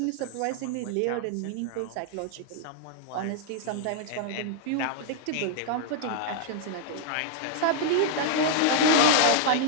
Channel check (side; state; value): both; different; correlation -0.01